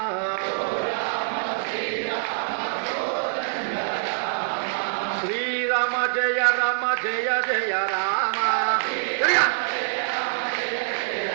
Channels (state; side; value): silent; left; 57 dB below the other